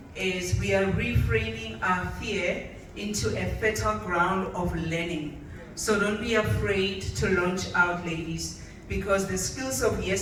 is we are reframing our fear into a fertile ground of learning. So don't be afraid to launch out, ladies, because the skills of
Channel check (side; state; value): both; identical; correlation 1.00